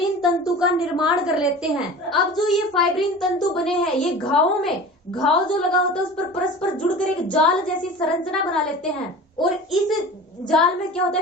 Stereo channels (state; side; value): normal; both; correlation 0.37